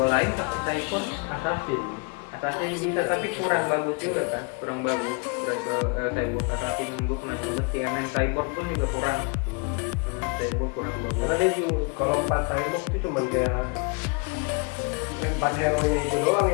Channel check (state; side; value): quieter; right; 33.6 dB